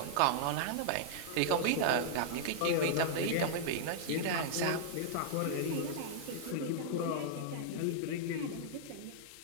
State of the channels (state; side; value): different; both; correlation -0.01